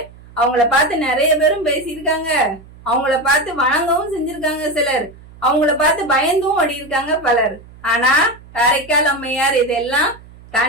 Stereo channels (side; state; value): right; noise; hum, 22 dB below the sound